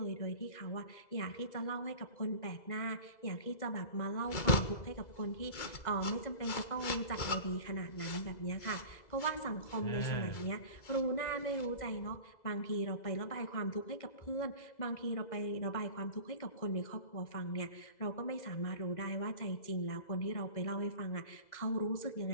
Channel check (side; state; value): right; late; 2.0 ms